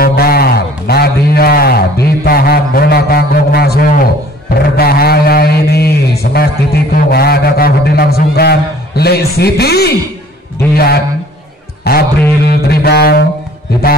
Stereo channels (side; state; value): both; normal; correlation 0.52